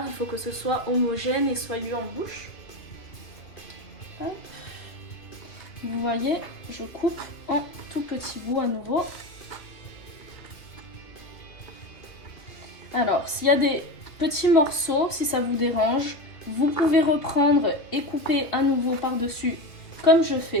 il faut que ce soit homogène et soyeux en bouche. Hop. Vous voyez, je coupe en tout petits bouts à nouveau. Alors, s'il y a des petits morceaux, si ça vous dérange, vous pouvez reprendre et couper à nouveau par-dessus, comme je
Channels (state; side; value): late; right; 2.5 ms